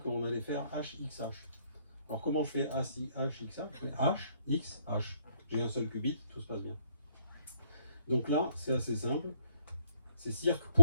allait faire HXH. Alors comment je fais HXH? Je fais H, X, H. J'ai un seul qubit, tout se passe bien. Donc là, c'est assez simple. C'est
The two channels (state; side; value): inverted; both; correlation -0.68